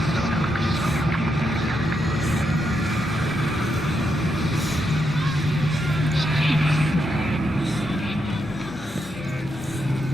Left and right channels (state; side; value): normal; both; correlation 0.81